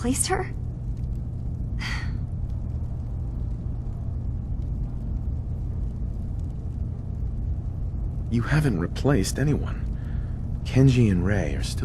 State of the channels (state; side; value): identical; both; correlation 1.00